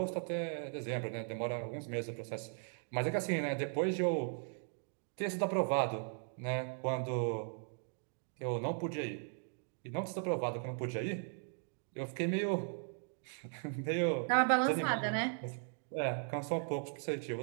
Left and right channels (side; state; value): left; silent; 53 dB below the other